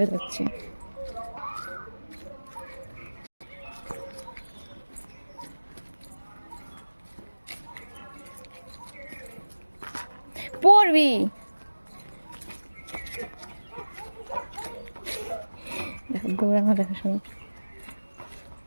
যাচ্ছে। পড়বি। দেখো দৌড়ানো, দেখো শুনো।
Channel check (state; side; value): inverted; both; correlation -1.00